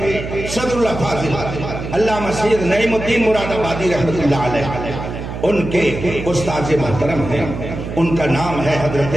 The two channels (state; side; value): noise; right; hum, 7 dB below the sound